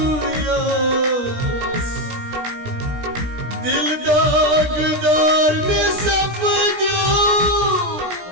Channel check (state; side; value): late; left; 17 ms